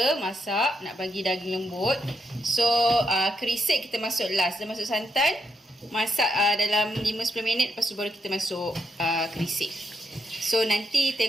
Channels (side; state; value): both; normal; correlation 0.80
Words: masak nak bagi daging lembut. So, kerisik kita masuk last. Dah masuk santan, masak dalam 5-10 minit, lepas tu baru kita masuk kerisik. So, nanti